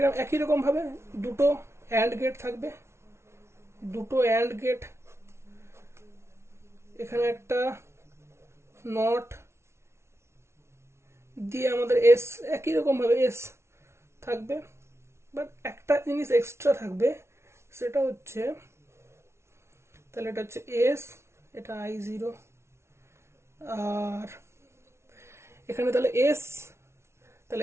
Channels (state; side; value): late; left; 0.13 ms